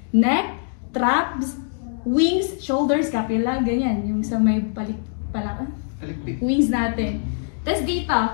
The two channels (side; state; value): right; silent; digital silence